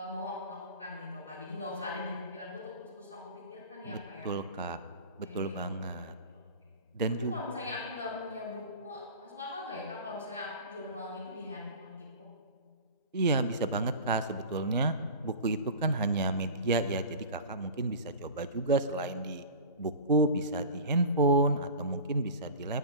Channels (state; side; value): inverted; both; correlation -0.35